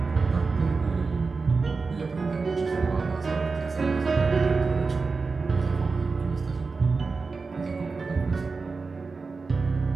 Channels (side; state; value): left; quieter; 4.3 dB